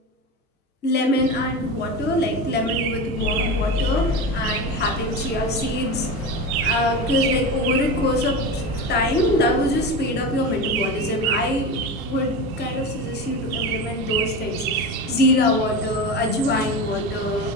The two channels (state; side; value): normal; both; correlation 0.24